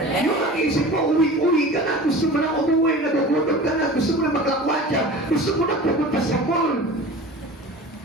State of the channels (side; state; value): both; normal; correlation 0.37